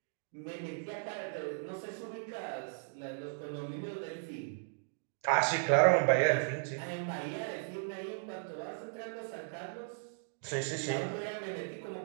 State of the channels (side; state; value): left; silent; digital silence